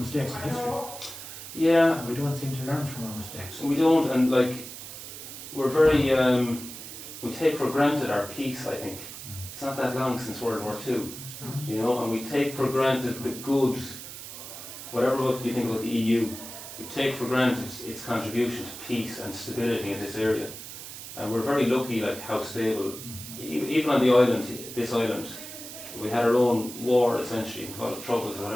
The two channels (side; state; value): right; noise; hiss, 11 dB below the sound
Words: of history. Yeah. And we don't seem to learn from our mistakes. We don't, and like, we're very, we take for granted our peace, I think. It's not that long since World War II, you know, and we take for granted the good, whatever you think about the EU, we take for granted its contribution to peace and stability in this area. And we're very lucky, like, how stable, even on the island, this island, we had our own war, essentially, call it troubles or